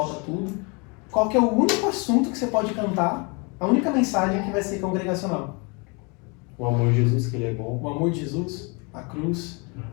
tudo. Qual que é o único assunto que você pode cantar, a única mensagem que vai ser congregacional? O amor de Jesus, que Ele é bom. O amor de Jesus, a cruz,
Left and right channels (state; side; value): quieter; right; 31.3 dB